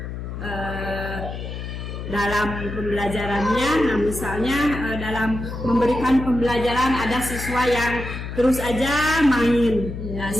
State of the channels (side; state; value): left; noise; hum, 7 dB below the sound